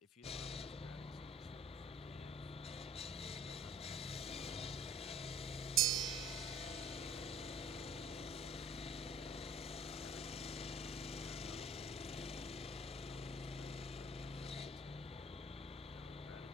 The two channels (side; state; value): both; normal; correlation 0.54